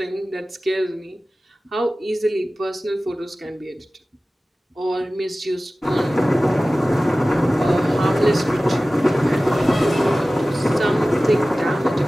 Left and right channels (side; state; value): both; normal; correlation 0.97